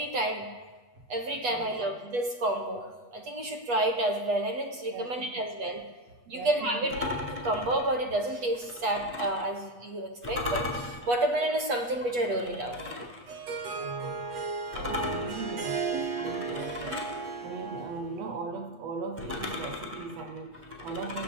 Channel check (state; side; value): late; left; 8.3 ms